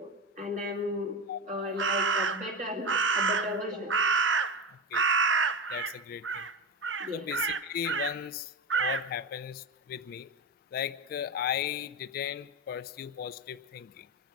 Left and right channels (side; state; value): both; normal; correlation 0.21